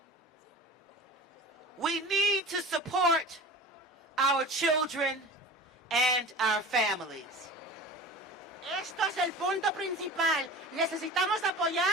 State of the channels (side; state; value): both; normal; correlation 0.37